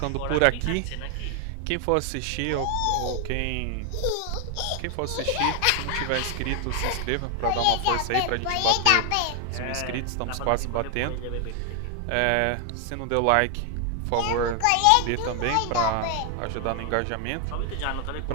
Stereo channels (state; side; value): different; both; correlation 0.00